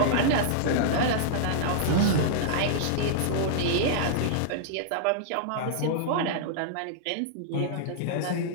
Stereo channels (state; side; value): different; both; correlation -0.02